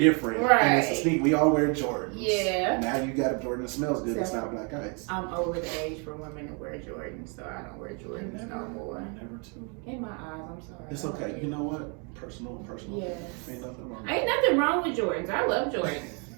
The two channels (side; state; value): left; quieter; 35.6 dB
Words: and it's a Right. sneaker. We all wear Jordans. Yeah. Now you got a Jordan that smells good. It's So- not black ice. I'm over the age for women to wear Jordans, so I don't wear Jordans no more. Never to. In my eyes, I'm sorry. It's okay. You know what? Personal. Yes. Ain't nothing wrong. Ain't nothing wrong with Jordans. I love Jordans,